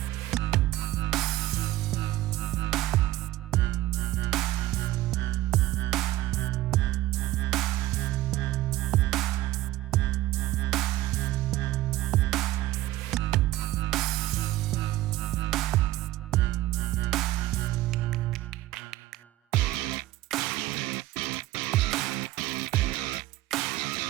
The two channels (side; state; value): left; quieter; 16.2 dB